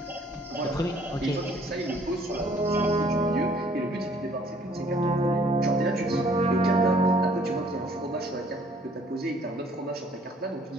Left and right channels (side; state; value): both; normal; correlation 0.60